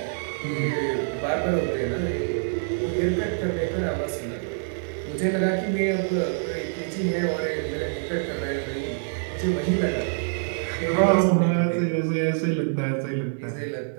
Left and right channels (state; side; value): silent; left; 60 dB below the other